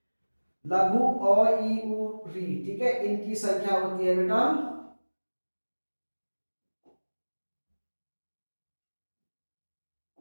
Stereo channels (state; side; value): inverted; both; correlation -1.00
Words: लघु अ ई उ री, ठीक है, इनकी संख्या होती है बेटा